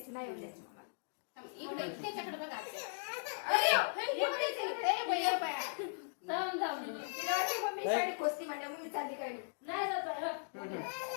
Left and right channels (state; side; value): silent; right; digital silence